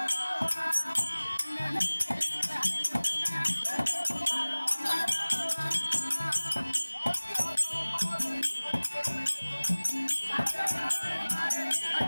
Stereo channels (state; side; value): inverted; both; correlation -1.00